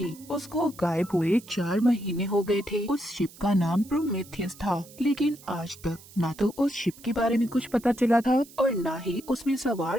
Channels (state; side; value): noise; right; hiss, 21 dB below the sound